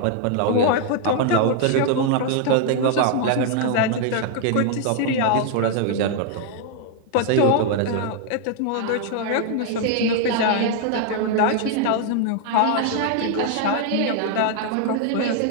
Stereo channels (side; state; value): both; different; correlation 0.00